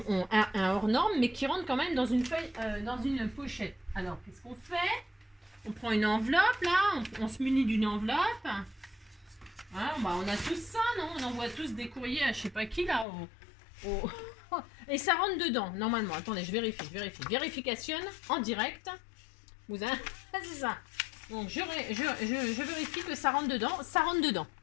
hors norme, mais qui rentre quand même dans une feuille, dans une pochette. Alors, qu'est-ce qu'on fait? On prend une enveloppe, là. On se munit d'une enveloppe. Hein, bah, on a tous ça, non? On envoie tous des courriers à je sais pas qui, là, et ça rentre dedans, normalement. Attendez, je vérifie. Vérification en direct. C'est ça. Donc, je vérifie que ça rentre dedans. Ça rentre dedans.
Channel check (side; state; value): right; drops out; at 13.1 s